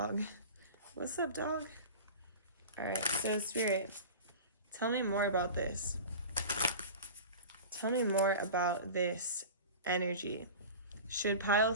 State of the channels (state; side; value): inverted; both; correlation -0.33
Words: What's up, dog? All right, so Spirit, tell me more about this. Tell me more about this energy. Should pile